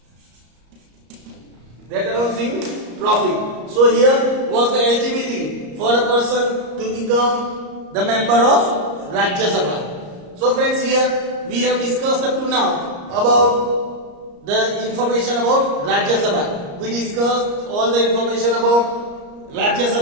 So here was the eligibility for a person to become the member of Rajya Sabha. So friends, here we have discussed up to now about the information about Rajya Sabha. We discussed all the information about Rajya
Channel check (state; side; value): late; left; 34 ms